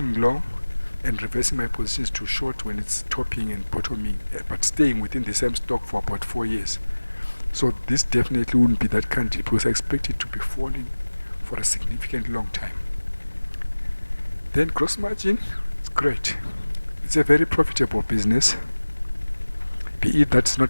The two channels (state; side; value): inverted; both; correlation -1.00